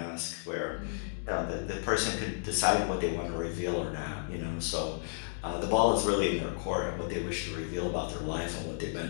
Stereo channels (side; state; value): right; silent; digital silence